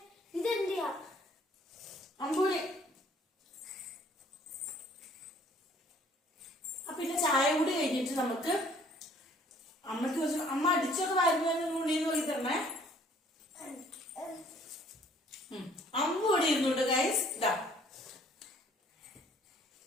പിന്നെ ചായ കൂടി കഴിഞ്ഞിട്ട് നമുക്ക് അമ്മക്ക് അമ്മ അടിച്ചൊക്കെ വരുന്ന ഉള്ളിന്ന് നോക്കി തരണേ. അമ്മ ഇവിടെ ഇരുന്നുണ്ട് ഗൈസ്. ഇതാ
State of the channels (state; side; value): normal; both; correlation 0.58